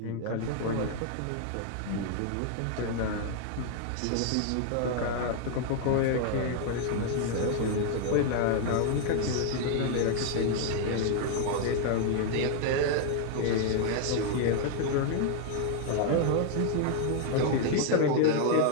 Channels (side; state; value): both; different; correlation 0.00